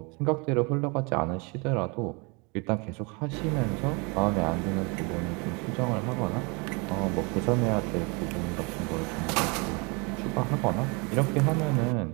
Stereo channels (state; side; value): quieter; left; 30.3 dB